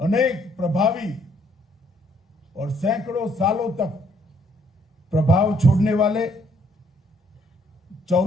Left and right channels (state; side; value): normal; both; correlation 0.67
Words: प्रभावी और सैकड़ों सालों तक प्रभाव छोड़ने वाले